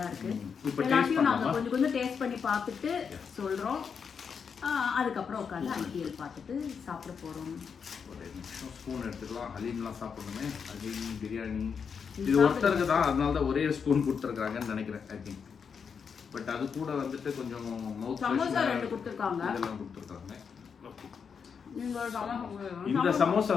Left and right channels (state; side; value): quieter; right; 6.4 dB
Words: இருக்கு. எல்லாத்தையும் நாங்கள் கொஞ்சம் கொஞ்சம் டேஸ்ட் பண்ணி பார்த்துட்டு சொல்கிறோம். அதுக்கப்புறம் உட்காந்து ஐடிஎல் பார்த்துட்டு சாப்பிட போகிறோம். ஒரு நிமிஷம் ஸ்பூன் எடுத்துக்கலாம். ஹலீம்லாம் சாப்பிடணுமே. ஹலீம் பிரியாணி இது ஒருத்தருக்கு தான், அதனால தான் ஒரே ஸ்பூன் கொடுத்துருக்காங்கன்னு நினைக்கிறேன். ஐ திங்க் பட் அது கூட வந்துட்டு கொஞ்சம் மவுத் சமோசா 2 கொடுத்துருக்காங்க. இதெல்லாம் கொடுத்துருக்காங்க. இந்த இந்த சமோசா